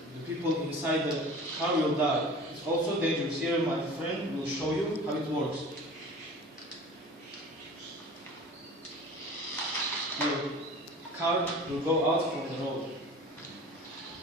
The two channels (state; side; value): normal; both; correlation 0.40